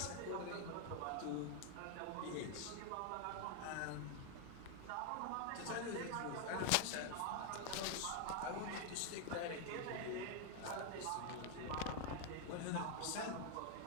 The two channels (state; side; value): different; both; correlation 0.00